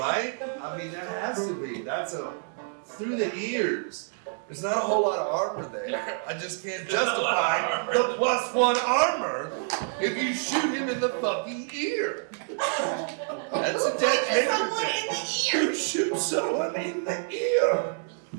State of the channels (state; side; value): silent; left; digital silence